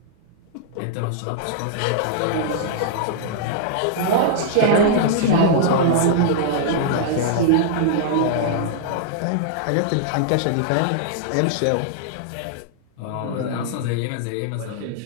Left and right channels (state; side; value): different; both; correlation -0.01